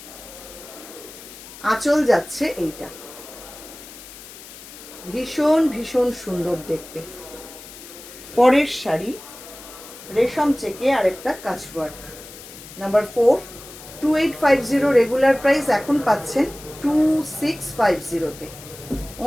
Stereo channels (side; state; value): left; noise; hiss, 16 dB below the sound